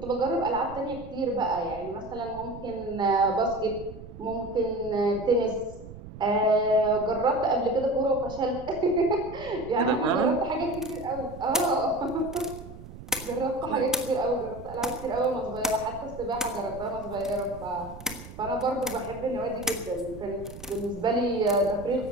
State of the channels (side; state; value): right; noise; rumble, 15 dB below the sound